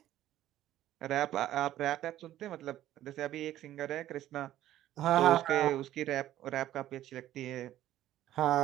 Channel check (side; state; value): left; quieter; 13.2 dB